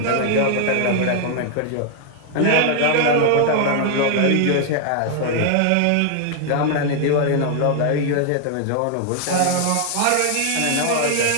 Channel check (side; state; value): both; different; correlation 0.00